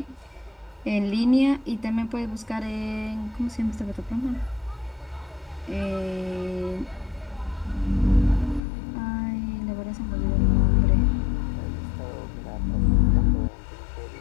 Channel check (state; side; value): drops out; right; at 8.6 s